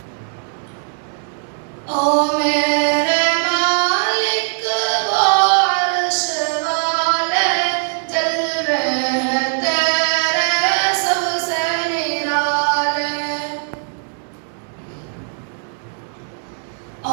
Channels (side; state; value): left; silent; 65 dB below the other